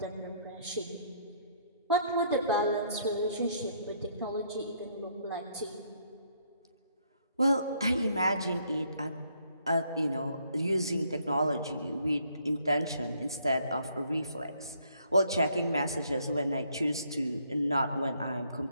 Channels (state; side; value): inverted; both; correlation -0.68